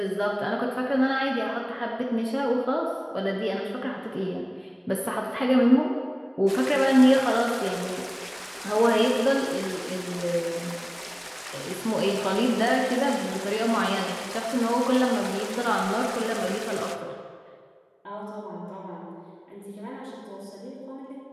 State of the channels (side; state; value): both; identical; correlation 1.00